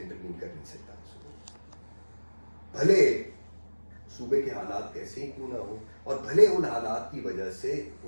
کر نہیں سکتا. بھلے صوبے کے حالات کیسے ہی کیوں نہ ہو اور بھلے ان حالات کی وجہ سے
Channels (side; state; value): both; inverted; correlation -1.00